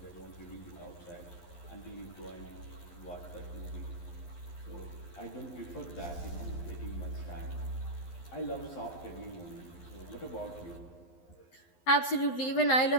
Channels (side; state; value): right; late; 11 ms